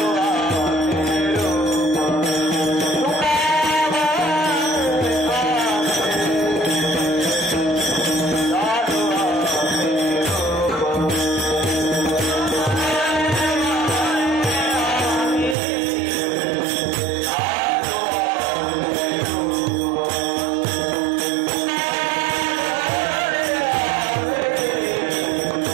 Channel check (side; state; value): left; drops out; at 15.6 s